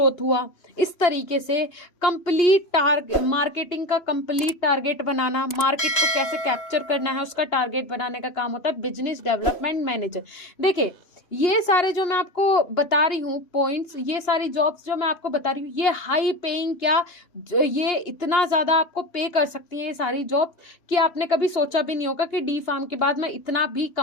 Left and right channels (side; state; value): right; late; 3.0 ms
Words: हुआ, इस तरीके से कंप्लीट मार्केटिंग का कंप्लीट टारगेट बनाना, मार्केट को कैसे कैप्चर करना है उसका टारगेट बनाने का काम होता है बिजनेस डेवलपमेंट मैनेजर। देखिए ये सारे जो मैं आपको बता रही हूँ पॉइंट्स, ये सारी जॉब्स जो मैं आपको बता रही हूँ, ये हाई पेइंग, क्या ये इतना ज्यादा आपको पे कर सकती हैं ये सारी जॉब कि आपने कभी सोचा भी नहीं होगा कि डी फार्म के बाद मैं इतना भी